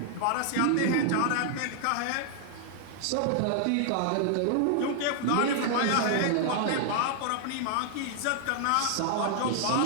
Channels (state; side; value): different; both; correlation -0.01